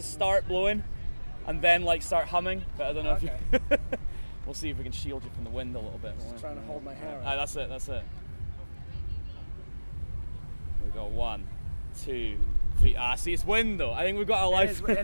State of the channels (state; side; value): inverted; both; correlation -1.00